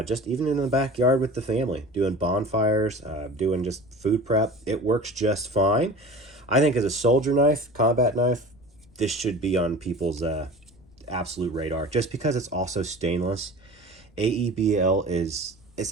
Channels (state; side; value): noise; left; rumble, 28 dB below the sound